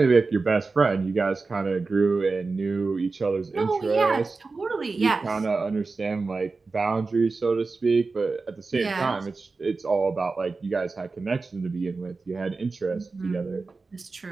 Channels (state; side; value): quieter; left; 4.0 dB